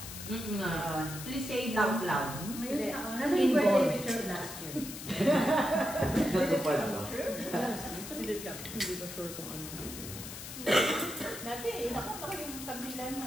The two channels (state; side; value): noise; left; hiss, 10 dB below the sound